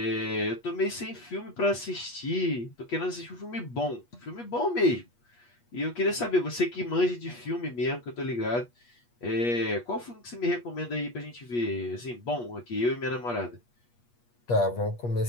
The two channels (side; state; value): right; late; 8.4 ms